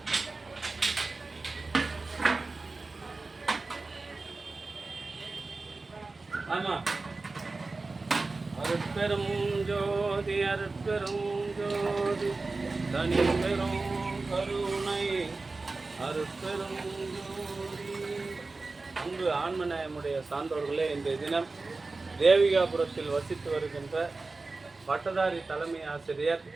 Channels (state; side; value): quieter; left; 3.6 dB